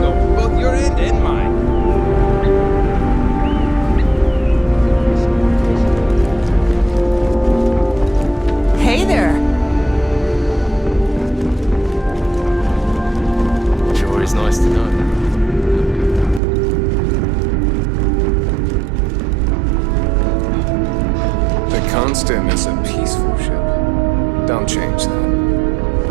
both your end and mine. Hey there. Sure is nice to know. The Constant is a peaceful ship. Don't change that.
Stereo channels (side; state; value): left; drops out; at 16.4 s